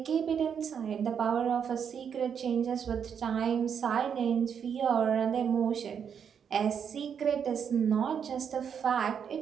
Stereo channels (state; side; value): quieter; left; 7.5 dB